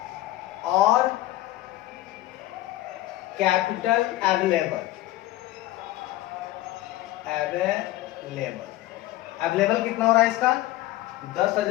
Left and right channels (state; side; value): quieter; right; 16.3 dB